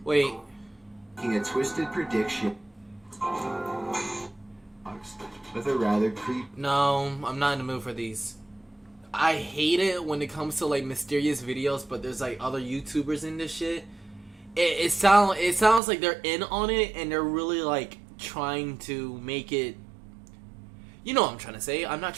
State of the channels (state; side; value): drops out; left; at 15.8 s